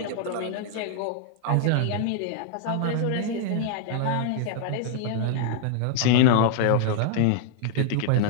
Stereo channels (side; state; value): both; different; correlation -0.01